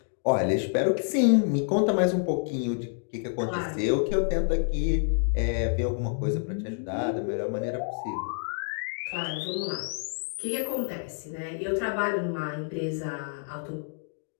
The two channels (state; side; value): silent; right; digital silence